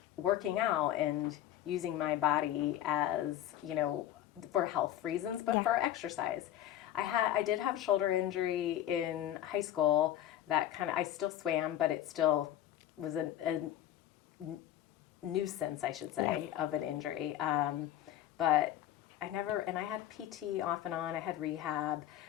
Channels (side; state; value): right; quieter; 12.2 dB